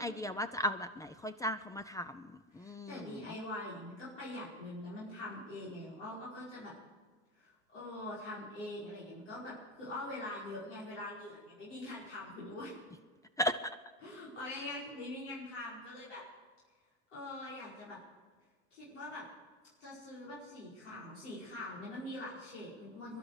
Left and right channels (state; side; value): normal; both; correlation 0.19